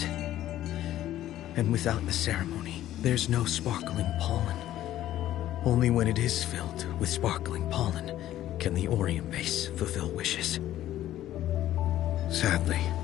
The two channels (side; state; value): right; quieter; 13.2 dB